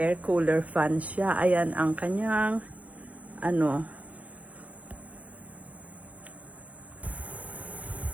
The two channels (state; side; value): late; left; 0.067 ms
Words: cooler fan siya. Ayan ang kanyang